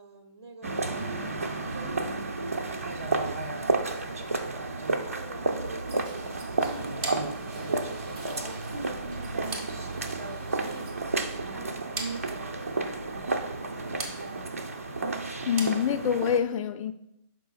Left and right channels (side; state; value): both; inverted; correlation -0.55